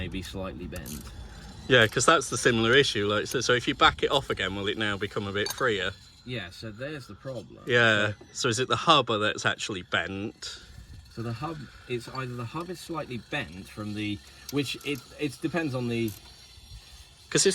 be slightly bent. Yeah, because that's the similar issue. Like, so if you back it off again, will it now become a bit freer? Yeah, so there's the problem. Yeah, so is it the hub that's actually bent? So the hub, it's either the hub is slightly bent from the, which it depends on the... Because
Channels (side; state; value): both; identical; correlation 1.00